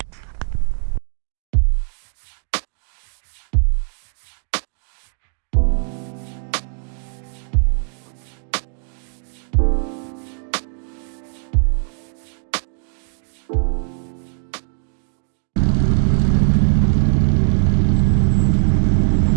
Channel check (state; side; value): silent; left; digital silence